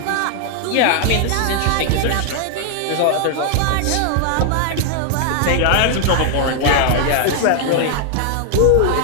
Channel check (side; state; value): both; different; correlation 0.00